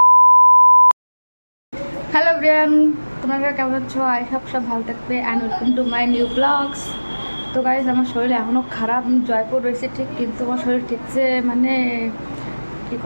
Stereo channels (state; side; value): inverted; both; correlation -1.00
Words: হ্যালো ব্রিয়ান, তোমরা কেমন আছো? আই সব ভালো থাকবে and welcome to my new blogs. তো গাইজ আমার শরীর এখনও খারাপ, আমি জয়পুর রয়েছে ঠিক, কিন্তু আমার শরীর ঠিকছে মানে কী